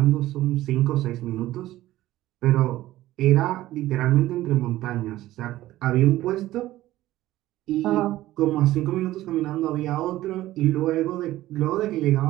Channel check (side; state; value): left; quieter; 15.5 dB